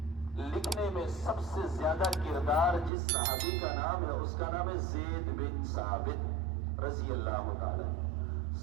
لکھنے میں سب سے زیادہ کردار جس صحابی کا نام ہے اس کا نام ہے زید بن ثابت رضی اللہ تعالی۔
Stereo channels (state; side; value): drops out; left; at 2.9 s